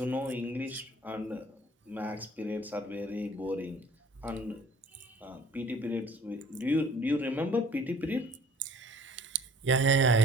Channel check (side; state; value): both; normal; correlation 0.52